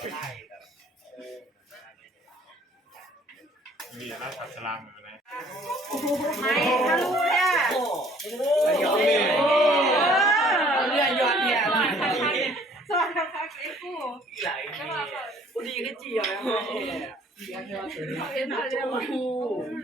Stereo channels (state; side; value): normal; both; correlation 0.57